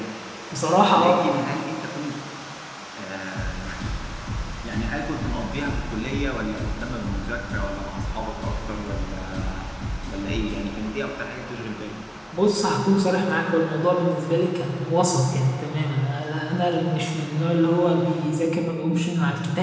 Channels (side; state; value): both; identical; correlation 1.00